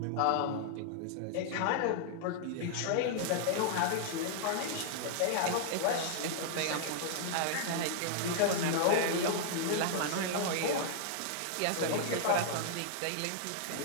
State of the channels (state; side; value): different; both; correlation -0.01